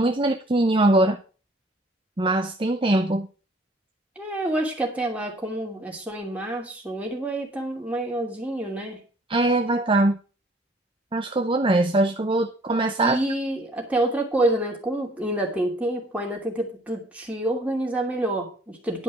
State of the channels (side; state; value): both; normal; correlation 0.57